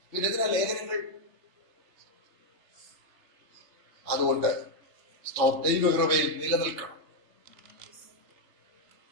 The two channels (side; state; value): left; late; 3.3 ms